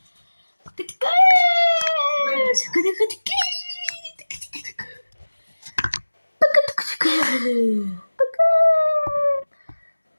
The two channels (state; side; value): inverted; both; correlation -1.00